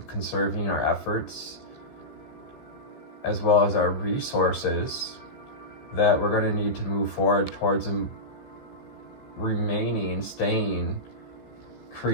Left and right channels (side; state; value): right; late; 15 ms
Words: conserving our efforts, as well as our resources that we're going to need to move forward towards staying,